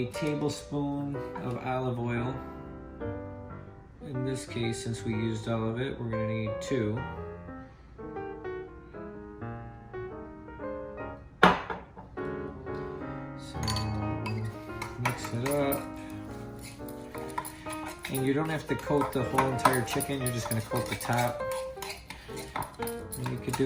tablespoon of olive oil. In this case, since we used all of it, we're gonna need 2. Mix it up. And you don't have to coat the whole entire chicken, you're just gonna coat the top. And you could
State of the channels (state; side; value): identical; both; correlation 1.00